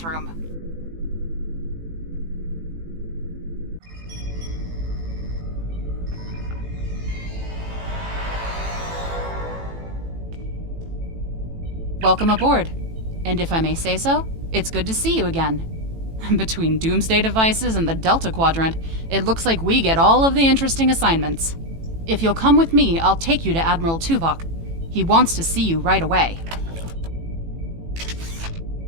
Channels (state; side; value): late; left; 18 ms